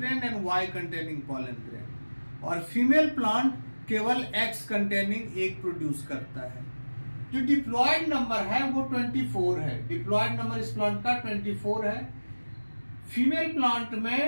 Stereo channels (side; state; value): both; inverted; correlation -1.00